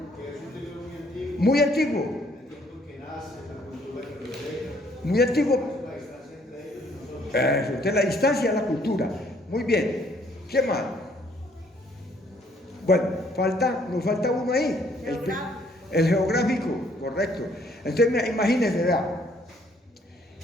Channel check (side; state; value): both; normal; correlation 0.64